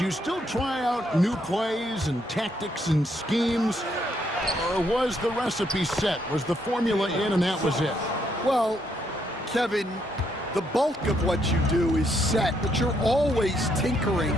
still try out new plays and tactics and schemes? Or was the recipe set? Was the formula in and that was it? Well, Kevin, the bulk of what you do is set, but you're always tinkering.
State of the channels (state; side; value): normal; both; correlation 0.74